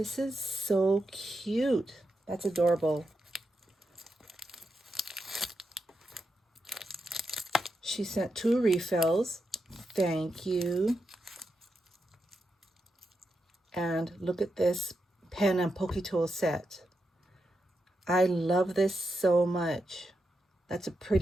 is so cute. That's adorable. She sent 2 refills. Thank you. And look at this pen and pokey tool set. I love this so much. That's a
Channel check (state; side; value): normal; both; correlation 0.86